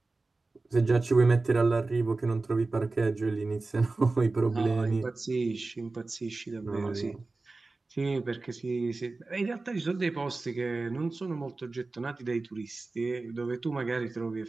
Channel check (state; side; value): quieter; left; 3.5 dB